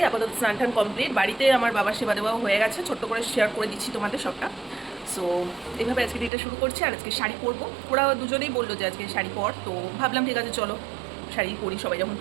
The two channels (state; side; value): drops out; left; at 6.3 s